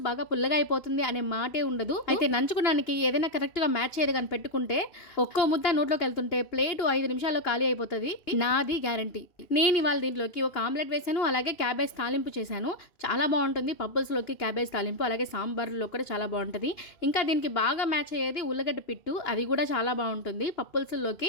బాగా పుల్లగా అయిపోతుంది అనే మాటే ఉండదు. అయితే నంచుకోవడానికి ఏదైనా కరెక్ట్ గా మ్యాచ్ చేయదు కానీ పెట్టుకుంటే ఒక్కో ముద్ద నోట్లోకి వెళ్తుంటే ప్లేట్ 5 నిమిషాల్లో ఖాళీ అయిపోతుంది, నాది గ్యారంటీ. నేను ఇవాళ దీంట్లోకి ఒక ఆమ్లెట్ వేసాను, అలాగే క్యాబేజ్ తాలింపు చేశాను. చాలా బాగుంటుంది పప్పుల్స్లోకి క్యాబేజ్ తాలింపు, అలాగే సాంబార్లో కూడా చాలా బాగుంటుంది. ఇంకా దీనికి బాగా మ్యాచ్ అయ్యేది ఉల్లగడ్డ పిట్టు, అది కూడా చాలా బాగుంటుంది.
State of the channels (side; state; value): right; late; 2.9 ms